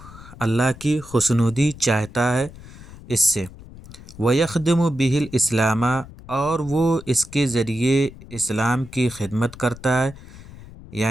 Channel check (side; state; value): left; noise; rumble, 18 dB below the sound